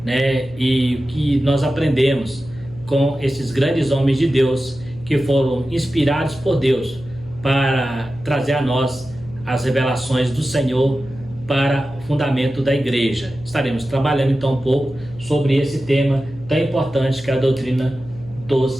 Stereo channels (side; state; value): left; noise; hum, 18 dB below the sound